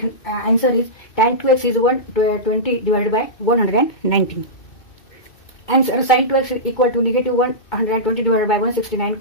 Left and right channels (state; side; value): late; right; 2.2 ms